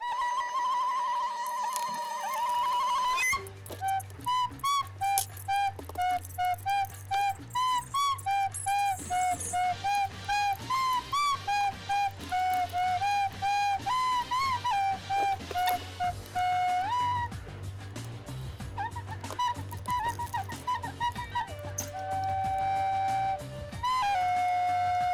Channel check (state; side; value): identical; both; correlation 1.00